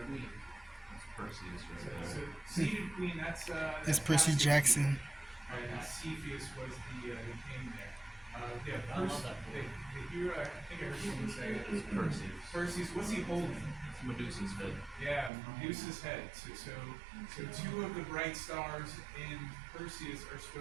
queen. That's Perseus right So there. seated queen. That's That's Percy Jackson. And Cepheus was the king there. Yeah, I love that the hero. I think I heard someone say it. It's Perseus. Perseus. What's he holding? It's Medusa's head. Yeah, Medusa's head. So two of the bright stars in Perseus are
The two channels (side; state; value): left; drops out; at 15.3 s